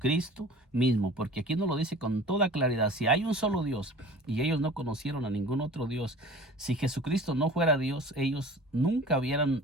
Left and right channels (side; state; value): both; normal; correlation 0.43